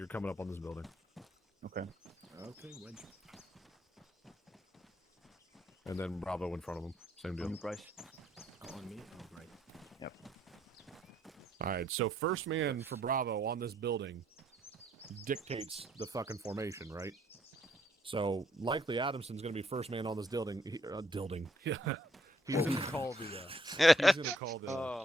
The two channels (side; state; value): both; normal; correlation 0.70